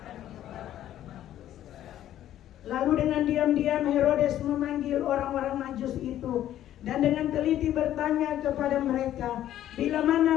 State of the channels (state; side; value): quieter; right; 12.2 dB